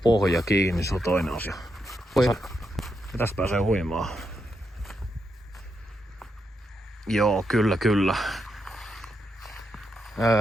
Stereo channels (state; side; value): normal; both; correlation 0.83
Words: kiinni, se on toinen asia. Ja tästä pääsee huimaan. Joo, kyllä.